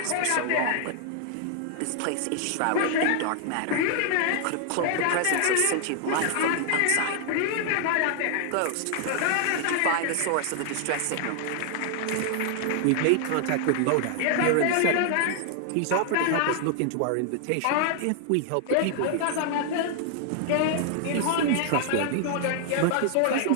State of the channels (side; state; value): both; different; correlation 0.00